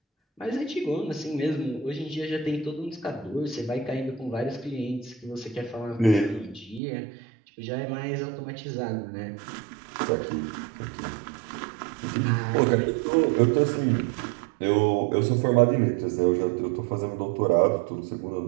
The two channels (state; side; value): drops out; left; at 6.8 s